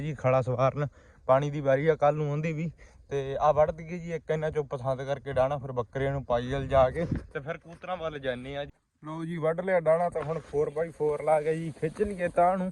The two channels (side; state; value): both; identical; correlation 1.00